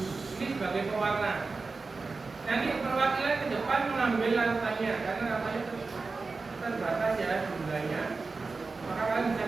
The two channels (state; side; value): quieter; left; 4.1 dB